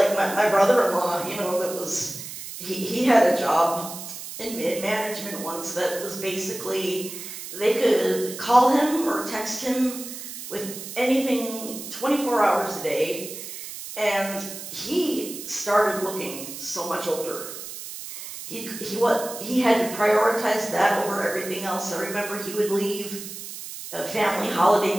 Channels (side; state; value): right; noise; hiss, 10 dB below the sound